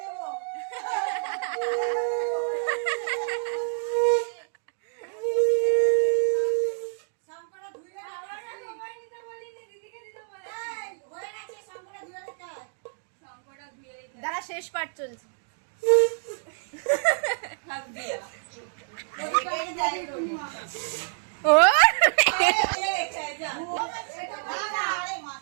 দাঁড়া, শেষ পার্ট চলছে। ও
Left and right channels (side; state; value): left; silent; digital silence